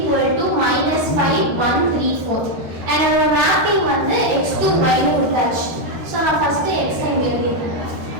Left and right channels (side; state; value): left; late; 13 ms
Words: to -5 1 3 4 and our mapping வந்து x to y னு கொடுத்தாச்சு. சோ நான் ஃபர்ஸ்ட் x இங்க எழுதிறேன்.